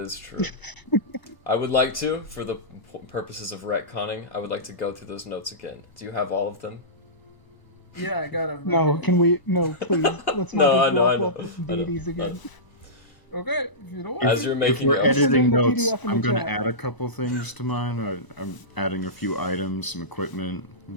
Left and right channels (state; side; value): late; right; 1.0 ms